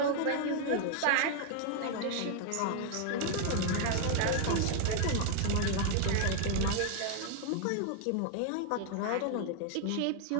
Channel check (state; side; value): different; both; correlation 0.00